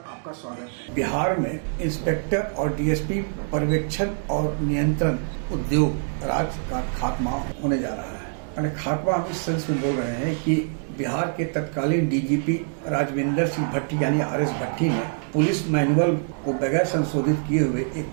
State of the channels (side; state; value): left; silent; digital silence